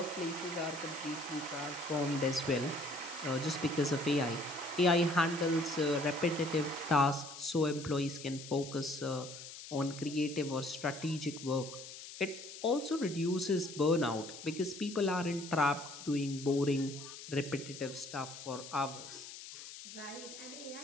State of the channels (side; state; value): left; noise; hiss, 12 dB below the sound